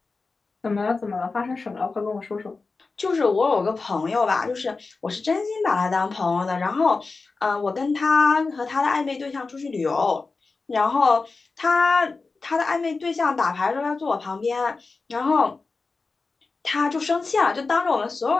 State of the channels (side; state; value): right; quieter; 4.0 dB